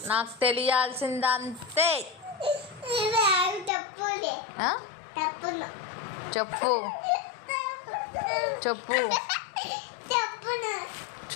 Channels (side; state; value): right; drops out; at 3.7 s